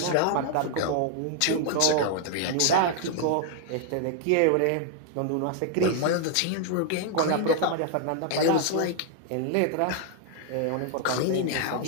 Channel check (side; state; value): both; different; correlation 0.00